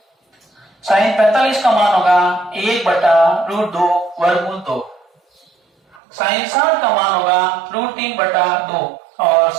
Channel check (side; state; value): left; drops out; at 6.0 s